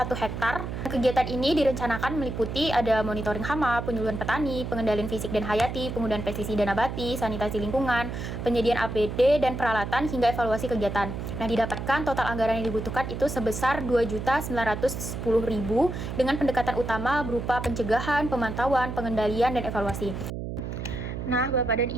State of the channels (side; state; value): right; noise; hum, 6 dB below the sound